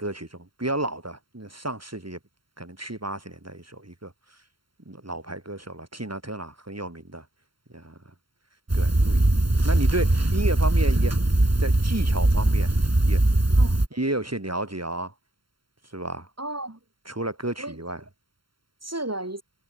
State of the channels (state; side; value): late; left; 0.73 ms